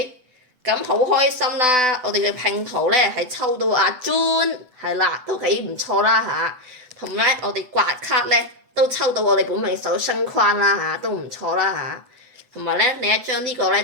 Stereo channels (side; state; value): left; late; 7.9 ms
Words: 咁好開心啦！我哋嘅拼圖咧係抽到阿 June，係啦，都幾唔錯啦嚇。同埋我哋刮卡咧都抽到我哋本命手星框啦嚇，都唔錯啦嚇。同埋咧另一張呢個咧